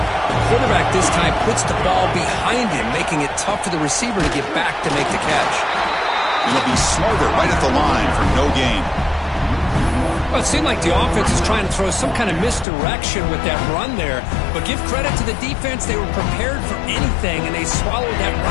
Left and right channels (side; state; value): right; drops out; at 12.7 s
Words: quarterback this time puts the ball behind him, making it tough for the receiver to get back to make the catch. He'll be smarter right at the line for no gain. Well, it seemed like the offense is trying to throw some kind of misdirection with that run there. But give credit to the defense. They were prepared for anything, and they swallowed that